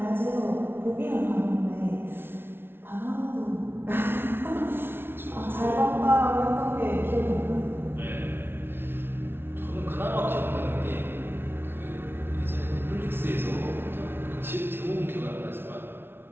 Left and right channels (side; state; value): left; late; 0.11 ms